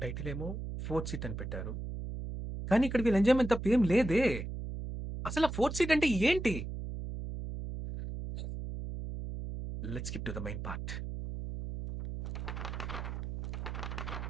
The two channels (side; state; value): right; noise; hum, 6 dB below the sound